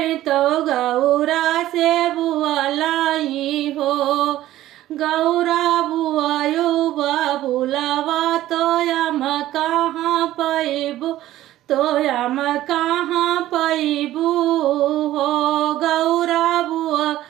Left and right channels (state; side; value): quieter; left; 14.4 dB